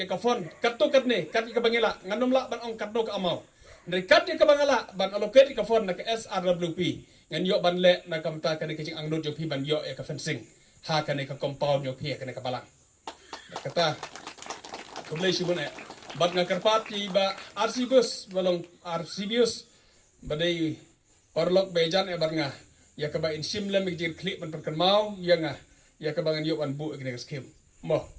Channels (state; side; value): identical; both; correlation 1.00